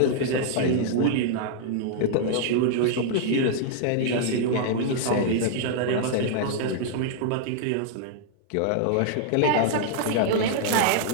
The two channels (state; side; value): different; both; correlation -0.01